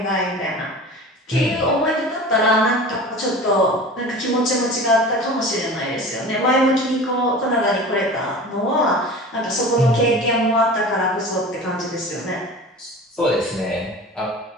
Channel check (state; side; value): normal; both; correlation 0.36